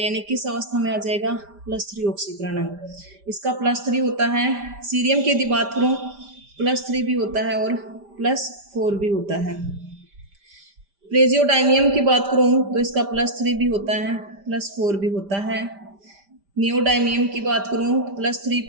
किस अवस्था में आ जाएगा, +3 ऑक्सीकरण अंक। इसका +3 होता है। सीरियम की यदि बात करूँ +3 भी होता है और +4 भी होता है। प्रेजियोडाइमियम की बात करूँ तो इसका +3 भी होता है, +4 भी होता है। नियोडाइमियम की बात करूँ तो +3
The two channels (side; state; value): left; late; 5.0 ms